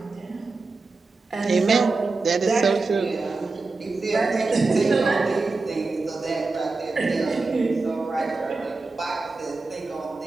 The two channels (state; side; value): quieter; left; 3.7 dB